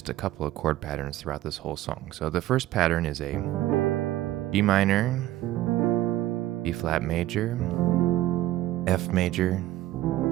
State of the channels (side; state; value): left; quieter; 14.8 dB